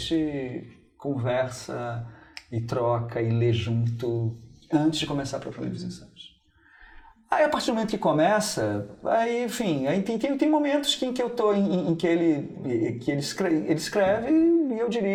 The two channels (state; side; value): identical; both; correlation 1.00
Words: conversa e troca e lê junto antes de começar propriamente os ensaios. Aí, a partir do momento que começa, aí, enfim, aí tem momentos em que eu tô, em que ele escreve e eu